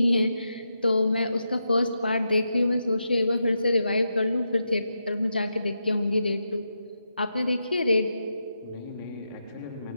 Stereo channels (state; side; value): inverted; both; correlation -0.86